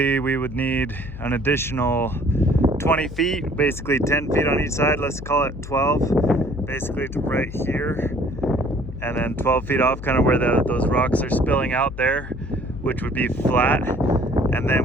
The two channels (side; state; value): left; noise; hum, 11 dB below the sound